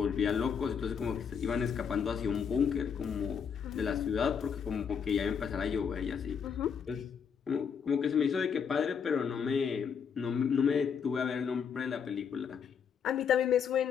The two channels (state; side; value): quieter; right; 6.9 dB